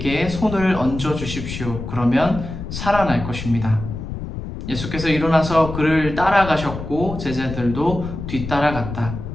손을 얹어 주십시오. 그러면 살아날 것입니다. 예수께서 일어나서 그를 따라가셨고 제자들도 뒤따라갔다.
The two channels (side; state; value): left; noise; rumble, 8 dB below the sound